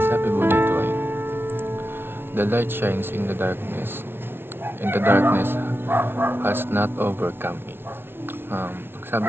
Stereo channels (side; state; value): left; late; 0.11 ms